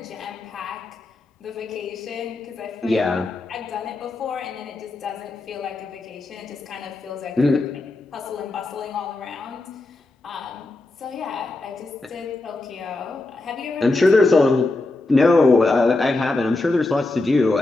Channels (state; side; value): quieter; right; 3.1 dB